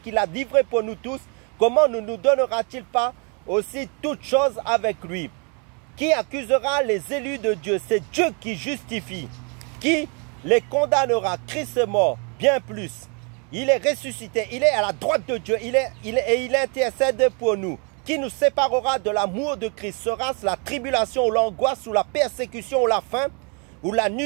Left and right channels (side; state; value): left; quieter; 35.3 dB